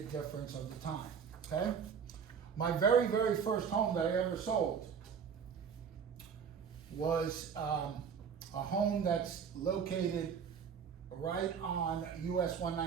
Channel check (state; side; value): quieter; left; 6.9 dB